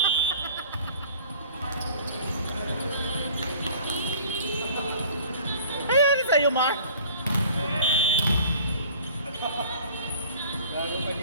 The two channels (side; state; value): both; inverted; correlation -0.49